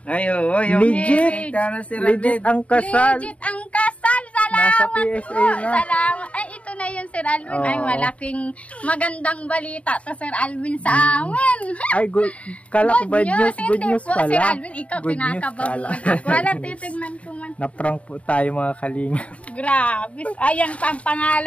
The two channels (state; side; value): late; right; 0.065 ms